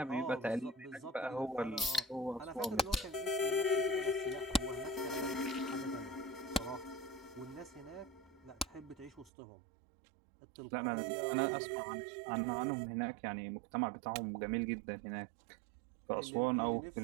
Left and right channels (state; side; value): drops out; left; at 9.3 s